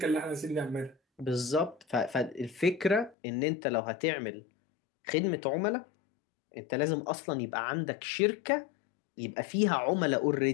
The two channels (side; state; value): right; drops out; at 3.2 s